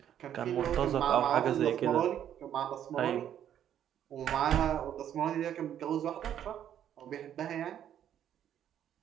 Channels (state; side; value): quieter; left; 10.2 dB